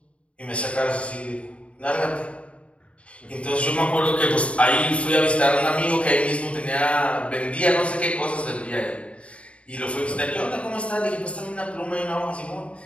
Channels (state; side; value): late; right; 0.062 ms